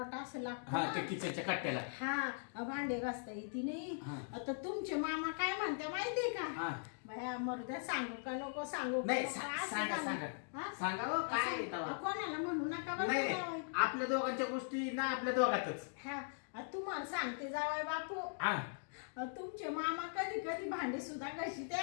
असं लागतं ते किचनच्या कट्ट्याला. हा भांडे घासता येते नाही. आता तुमचे मामा काय म्हणते माहितीये का? बाया मरुद्या सांगू का नको सांगू? नाही सांगा सांगा हो, काय कोणाला म्हणू नका बरं नाही जावई. आपल्या दोघांच्या गोष्टी ना आपल्या दोघातच. तुम्हाला सांगते जावाई बापू, तुमचे मामा कधी कधी भांडे सुद्धा घाशीत्या.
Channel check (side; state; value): right; silent; digital silence